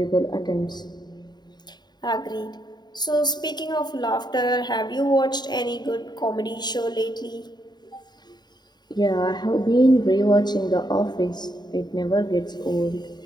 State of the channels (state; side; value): late; right; 0.20 ms